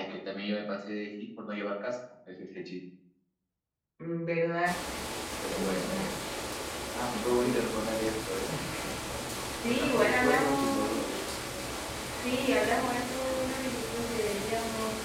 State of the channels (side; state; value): both; identical; correlation 1.00